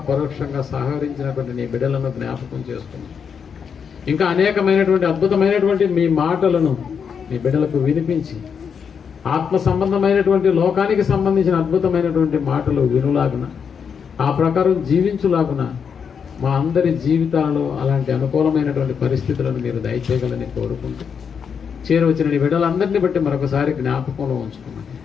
పరోక్షంగా సహకరించినటువంటి నీ బిడ్డలను జ్ఞాపకం చేసుకోండి. ఇంకా అనేకమైనటువంటి అద్భుతమైనటువంటి మీ మాటలను మీ బిడ్డలకు వినిపించి ఆత్మ సంబంధమైనటువంటి లోకానికి సంబంధించిన అద్భుతమైనటువంటి మాటలు వినులాగున, ఆ ప్రకారం జీవించులాగున మా అందరి జీవితాలలో అలాంటి అనుకూలమైనటువంటి పరిస్థితులను మీరు దయచేయగలని కోరుకుంటూ చేరవచ్చిన నీ బిడ్డలందరినీ బట్టి మరొకసారి జ్ఞాపకంలో ఉంచుకున్నాను.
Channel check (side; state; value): right; quieter; 6.8 dB